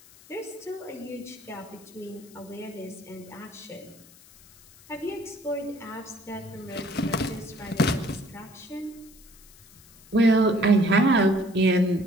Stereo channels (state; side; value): noise; left; hiss, 24 dB below the sound